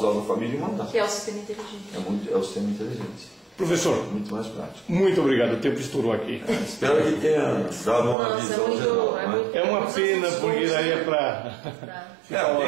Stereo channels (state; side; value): drops out; left; at 8.2 s